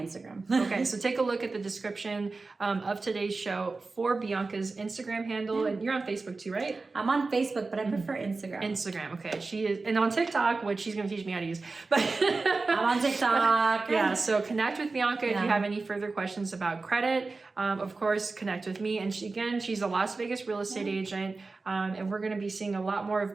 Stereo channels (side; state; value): left; quieter; 3.8 dB